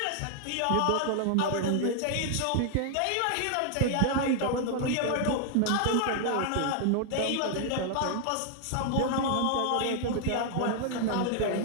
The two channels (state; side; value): different; both; correlation 0.00